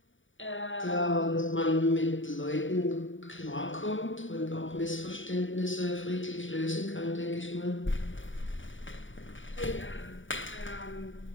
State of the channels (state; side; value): late; right; 0.56 ms